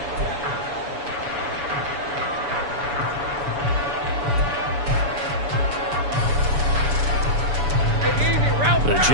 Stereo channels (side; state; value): left; late; 7.0 ms